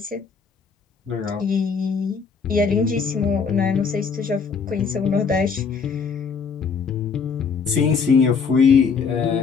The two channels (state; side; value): quieter; right; 5.6 dB